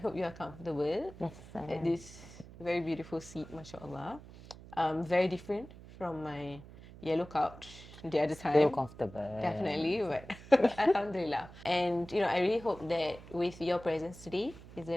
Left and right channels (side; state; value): right; noise; hum, 17 dB below the sound